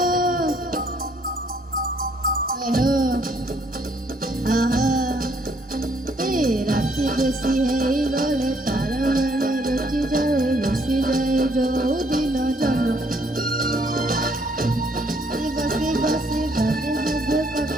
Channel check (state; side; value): normal; both; correlation 0.67